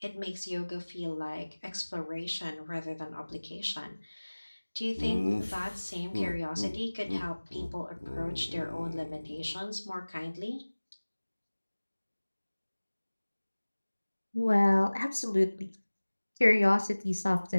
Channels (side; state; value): both; inverted; correlation -1.00